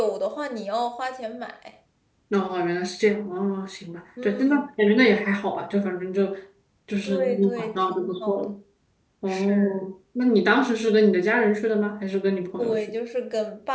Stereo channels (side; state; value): both; identical; correlation 1.00